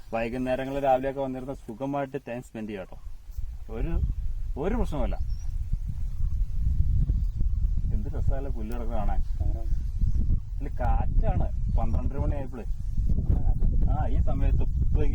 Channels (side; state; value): both; identical; correlation 1.00